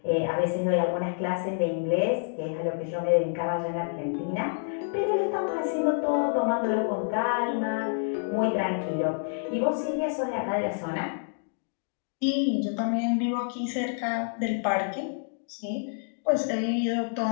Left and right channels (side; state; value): right; silent; digital silence